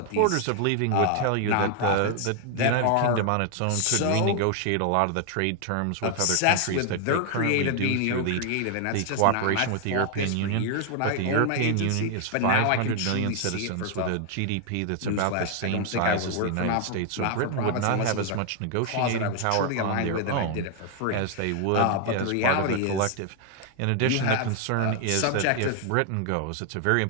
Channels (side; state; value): both; different; correlation 0.00